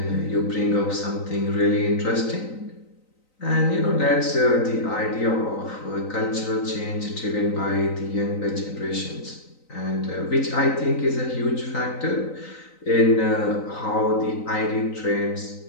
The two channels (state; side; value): late; right; 3.9 ms